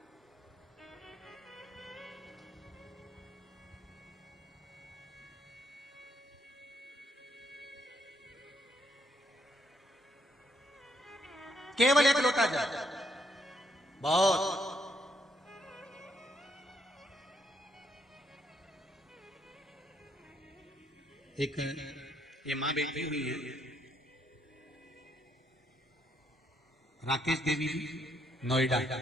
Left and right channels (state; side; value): normal; both; correlation 0.73